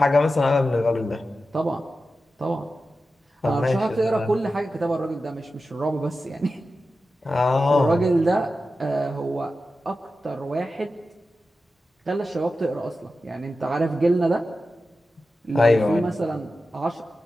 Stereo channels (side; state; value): both; normal; correlation 0.92